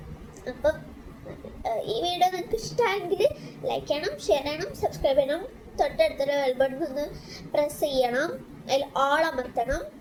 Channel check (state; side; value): identical; both; correlation 1.00